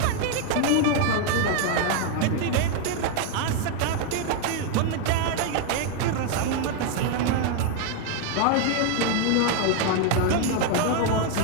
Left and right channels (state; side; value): different; both; correlation 0.00